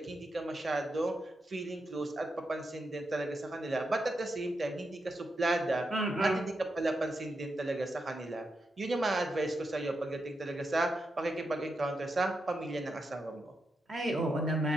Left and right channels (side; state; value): both; normal; correlation 0.85